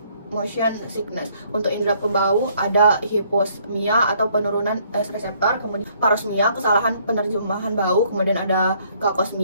motion sickness. Untuk indera pembau ada hiposmia atau penurunan reseptor, kemudian parosmia kesalahan penerjemahan bau, kemudian ada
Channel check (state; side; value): inverted; both; correlation -0.64